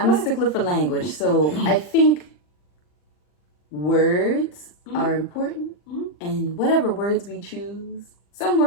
a stickler for language. So I think words are important. And whatever words we choose, some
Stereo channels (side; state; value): right; late; 40 ms